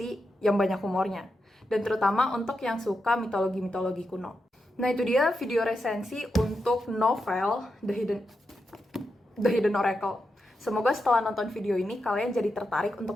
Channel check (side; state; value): both; normal; correlation 0.87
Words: yang banyak humornya. Dan terutama untuk yang suka mitologi-mitologi kuno. Nah itu dia video resensi untuk novel The Hidden Oracle. Semoga setelah nonton video ini kalian jadi tertarik untuk